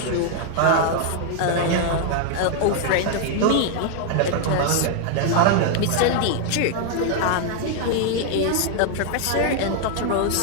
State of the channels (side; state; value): both; different; correlation 0.00